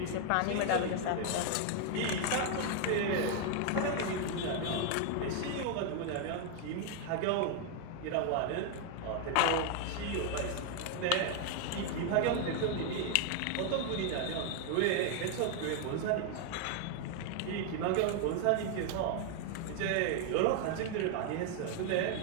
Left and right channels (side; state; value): both; different; correlation 0.00